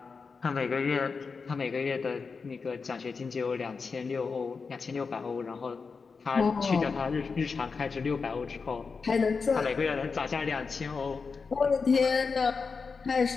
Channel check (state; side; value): quieter; right; 4.9 dB